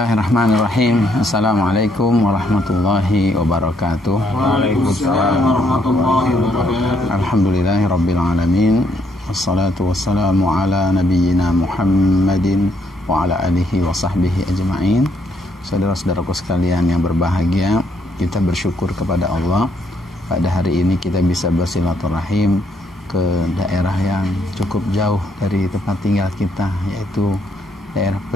Assalamualaikum warahmatullahi wabarakatuh. Waalaikumsalam warahmatullahi wabarakatuh. Alhamdulillahirabbil alamin. Wassalatu wassalamu ala nabiyyina Muhammadin wa ala alihi wa sahbihi ajma'in. Saudara-saudaraku sekalian yang berbahagia, kita bersyukur kepada Allah pada hari ini kita bisa bersilaturahim ke daerah yang cukup jauh dari tempat tinggal kita, yaitu daerah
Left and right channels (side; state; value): both; normal; correlation 0.73